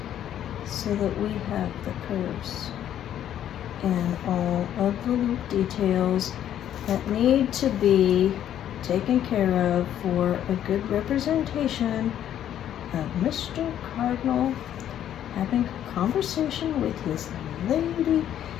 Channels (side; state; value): right; quieter; 10.7 dB